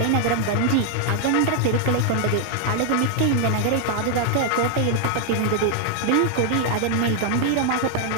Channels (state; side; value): different; both; correlation 0.00